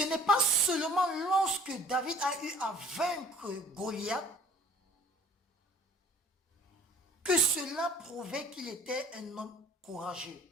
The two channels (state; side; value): normal; both; correlation 0.51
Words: n'est pas seulement lorsque David a eu à vaincre Goliath que cela prouvait qu'il était un homme courageux.